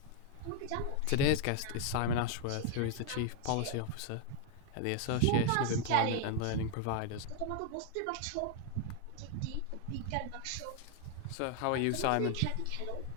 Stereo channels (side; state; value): both; different; correlation 0.00